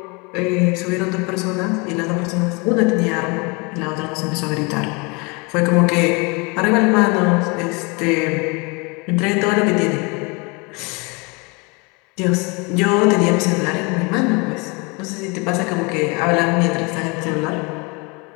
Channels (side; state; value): right; quieter; 29.4 dB